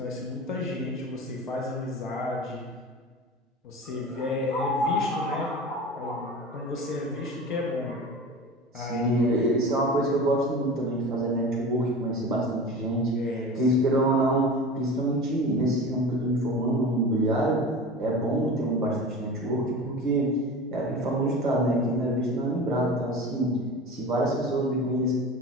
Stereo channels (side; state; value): both; normal; correlation 0.34